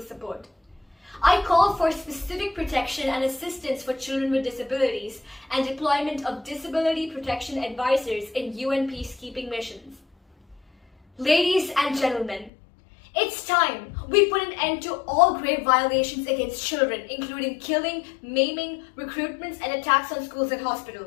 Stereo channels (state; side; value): drops out; right; at 12.5 s